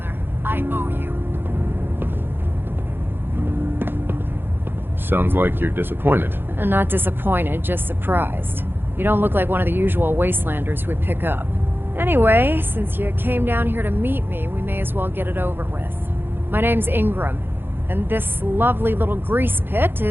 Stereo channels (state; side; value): late; left; 0.10 ms